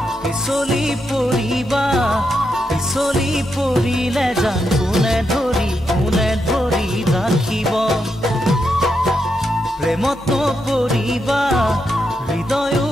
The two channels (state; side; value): normal; both; correlation 0.83